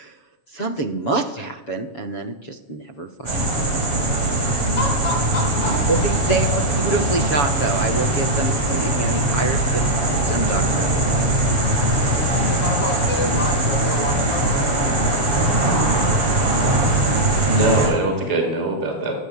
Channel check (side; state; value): right; late; 7.1 ms